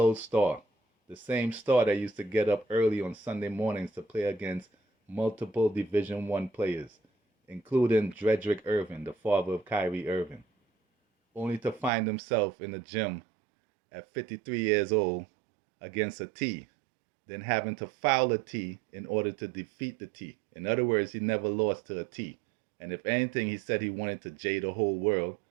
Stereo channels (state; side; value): drops out; left; at 11.9 s